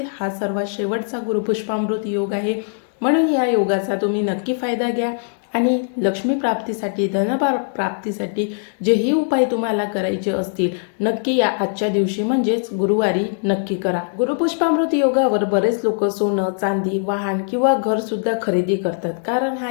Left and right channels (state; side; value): silent; right; digital silence